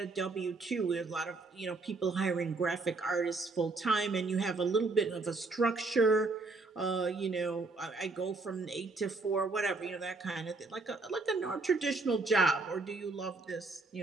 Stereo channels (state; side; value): quieter; left; 3.6 dB